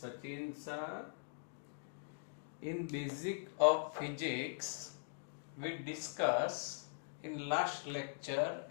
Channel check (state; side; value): silent; right; digital silence